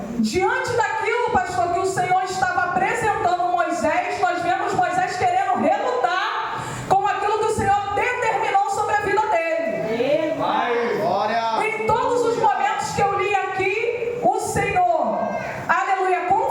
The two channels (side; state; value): both; identical; correlation 1.00